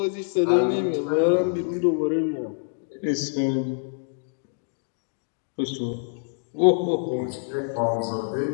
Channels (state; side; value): silent; right; digital silence